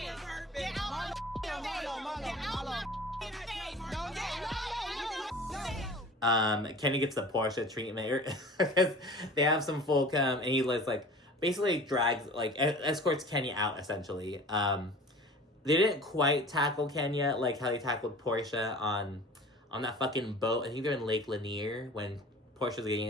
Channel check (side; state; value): both; normal; correlation 0.42